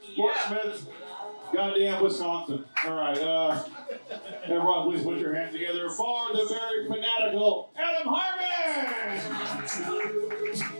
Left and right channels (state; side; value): inverted; both; correlation -1.00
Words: Fort Smith, goddamn Wisconsin. All right, everyone please put your hands together for the very fanatical Adam Harmon!